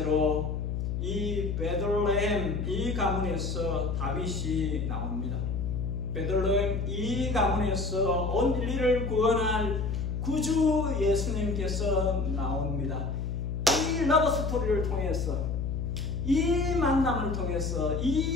이 베들레헴 이 가문에서 다윗이 나옵니다. 베들레헴 이 가문에서 온 인류를 구원할 구주 예수님께서 나옵니다. 이 러브 스토리를 통해서, 이 만남을 통해서,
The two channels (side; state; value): left; noise; hum, 2 dB below the sound